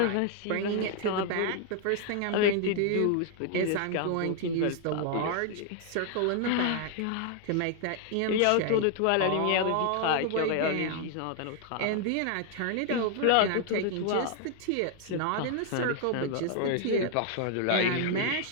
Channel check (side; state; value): both; different; correlation 0.00